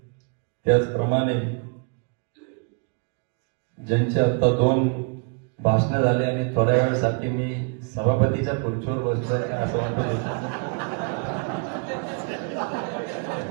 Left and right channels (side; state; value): left; quieter; 38.3 dB